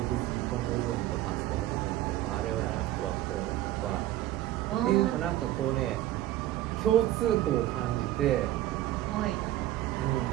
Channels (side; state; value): left; quieter; 14.3 dB